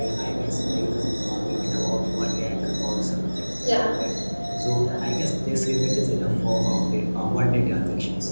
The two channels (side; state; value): both; inverted; correlation -1.00